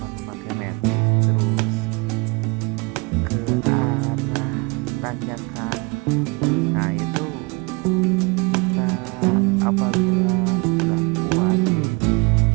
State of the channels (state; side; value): quieter; left; 28.3 dB